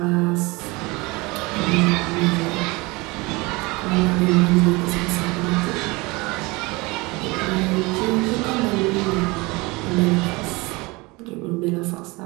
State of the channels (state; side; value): quieter; left; 24.2 dB